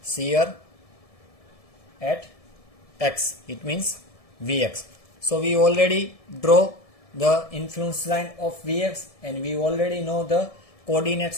shear at X. It means Vx. So we already draw the influence line of Vx and we already know the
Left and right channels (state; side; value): late; right; 1.7 ms